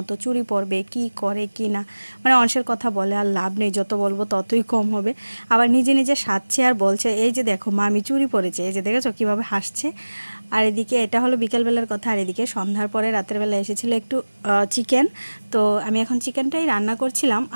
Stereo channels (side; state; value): both; inverted; correlation -1.00